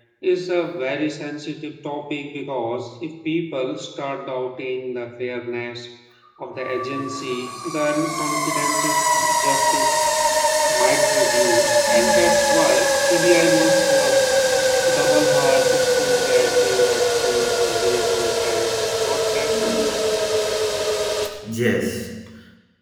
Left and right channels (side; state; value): both; identical; correlation 1.00